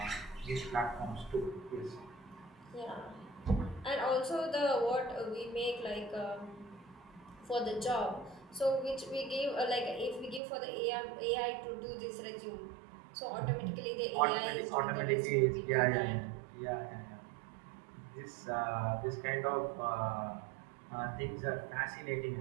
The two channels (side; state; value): left; drops out; at 10.4 s